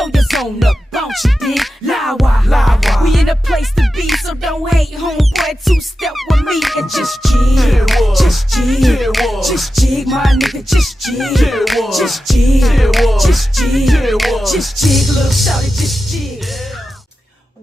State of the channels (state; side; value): normal; both; correlation 0.92